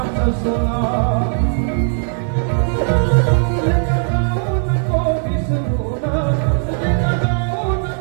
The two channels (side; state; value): left; silent; 57 dB below the other